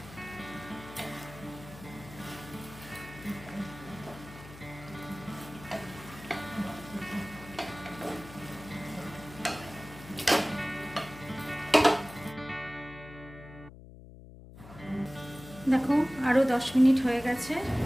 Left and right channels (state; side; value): noise; left; hum, 17 dB below the sound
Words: আরও 10 মিনিট হয়ে গেছে,